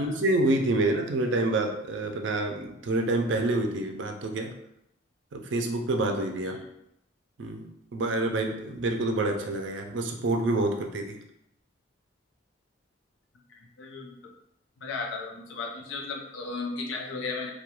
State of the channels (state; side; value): normal; both; correlation 0.36